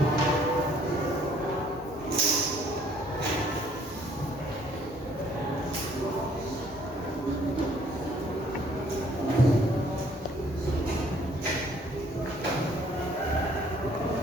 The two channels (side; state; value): both; normal; correlation 0.61